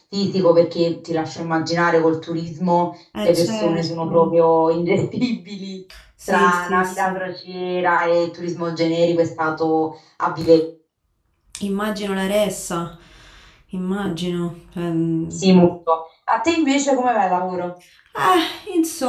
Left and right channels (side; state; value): both; identical; correlation 1.00